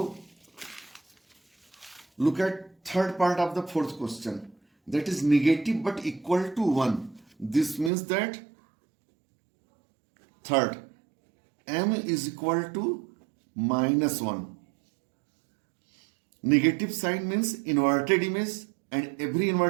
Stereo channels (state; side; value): drops out; left; at 7.9 s